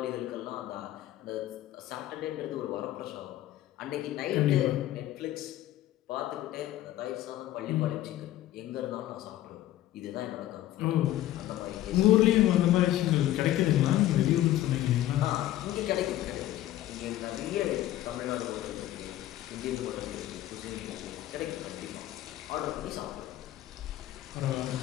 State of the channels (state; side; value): quieter; right; 13.9 dB